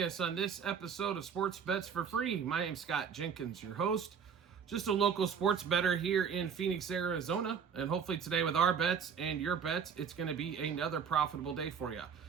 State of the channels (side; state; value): left; quieter; 6.9 dB